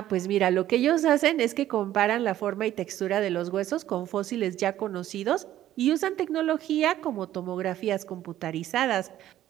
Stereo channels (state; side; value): quieter; left; 12.9 dB